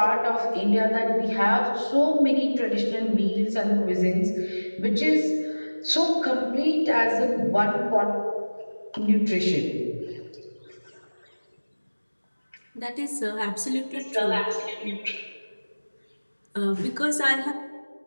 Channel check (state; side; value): inverted; both; correlation -1.00